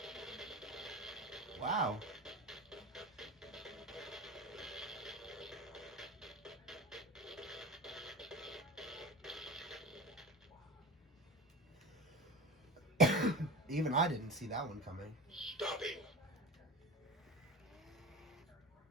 Wow. Even I didn't see that one coming. Stopping.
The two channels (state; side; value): normal; both; correlation 0.30